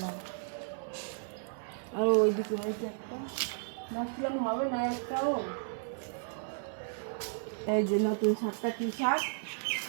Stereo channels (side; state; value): left; silent; digital silence